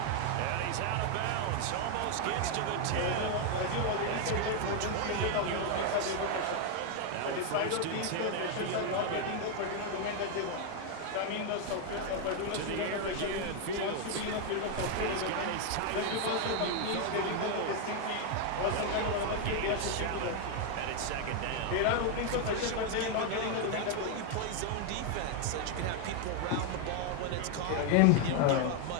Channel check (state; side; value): different; both; correlation 0.00